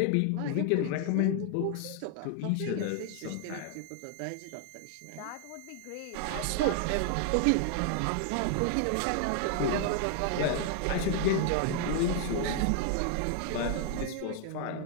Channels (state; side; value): different; both; correlation 0.00